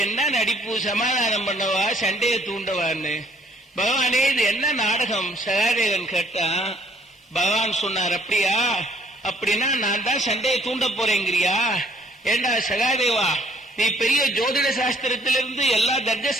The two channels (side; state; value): both; normal; correlation 0.62